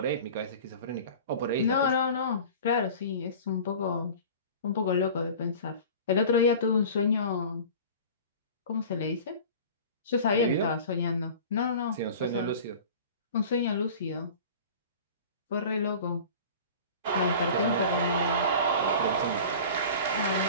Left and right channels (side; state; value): both; inverted; correlation -0.39